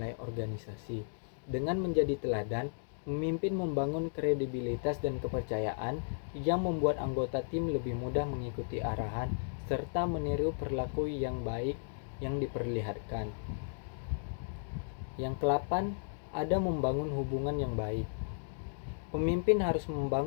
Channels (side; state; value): right; silent; digital silence